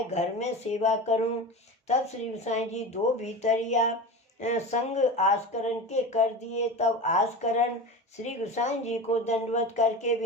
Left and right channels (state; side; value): normal; both; correlation 0.28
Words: घर में सेवा करूं। तब श्री गोसाई जी दो भीतरिया संग आस्करण के कर दिए। तब आस्करण श्री गोसाई जी को दंडवत करके